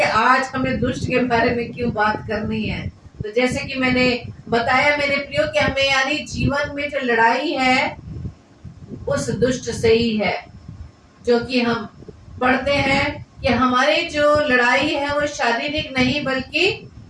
आज हमें दुष्ट के बारे में क्यों बात करनी है। तो जैसे कि मैंने बताया मेरे प्रियो कि हमें यानी जीवन में जो लड़ाई है उस दुष्ट से ही है, जो कि हम पढ़ते हैं कि हमारी जो लड़ाई है वो शारीरिक नहीं बल्कि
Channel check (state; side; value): identical; both; correlation 1.00